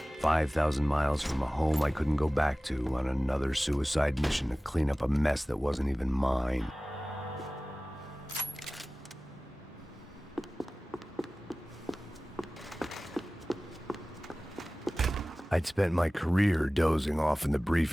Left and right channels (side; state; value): both; normal; correlation 0.98